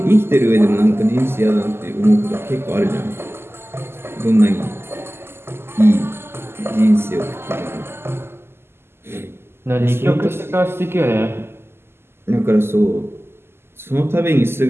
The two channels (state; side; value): late; left; 0.12 ms